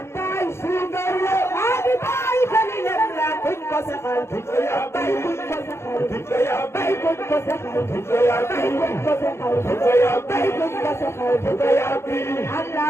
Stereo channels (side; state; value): right; late; 0.13 ms